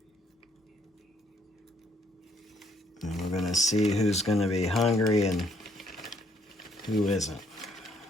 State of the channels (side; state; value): both; normal; correlation 0.68